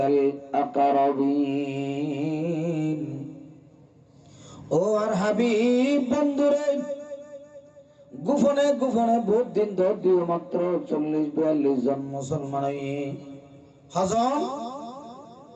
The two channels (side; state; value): both; identical; correlation 1.00